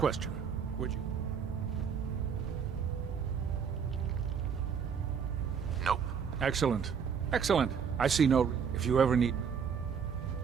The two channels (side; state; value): left; quieter; 6.9 dB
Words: Would you... Nope. Excellent. Excellent. I see no... If you ever need...